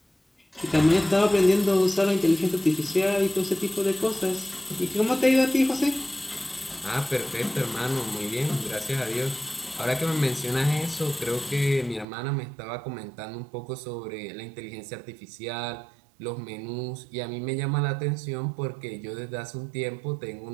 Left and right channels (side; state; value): left; drops out; at 12.1 s